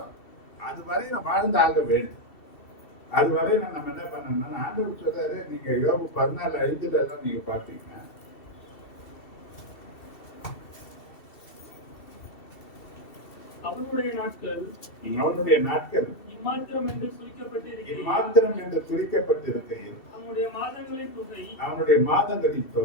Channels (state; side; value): late; right; 2.7 ms